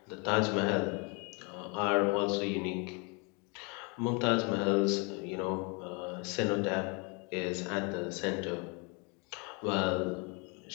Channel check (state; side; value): quieter; right; 32.4 dB